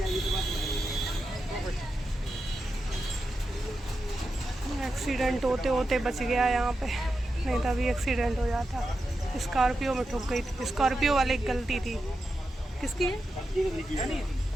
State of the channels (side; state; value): both; normal; correlation 0.89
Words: एक्सीडेंट होते होते बच गया यहाँ पे, नहीं तो अभी एक्सीडेंट हो जाता। स्कॉर्पियो में ठुक गई थी, स्कॉर्पियो वाले की गलती थी। किसकी है?